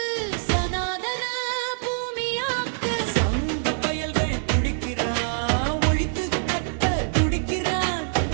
சனாதன பூமியாக்க சங்க பயல்கள் துடிக்கிறான். ஒழித்து கட்ட துடிக்கிறான்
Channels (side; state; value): left; silent; digital silence